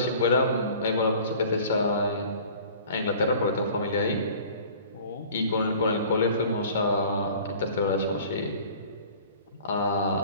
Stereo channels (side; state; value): both; inverted; correlation -0.46